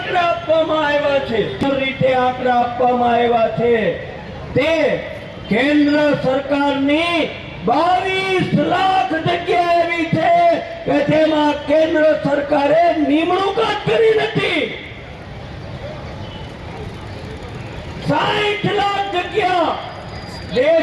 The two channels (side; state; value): both; identical; correlation 1.00